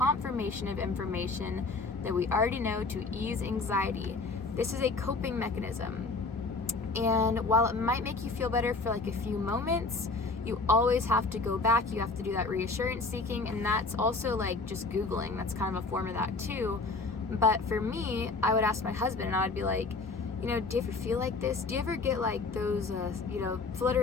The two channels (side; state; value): right; quieter; 3.8 dB